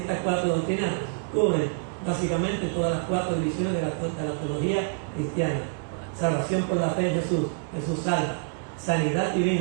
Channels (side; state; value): left; quieter; 38.6 dB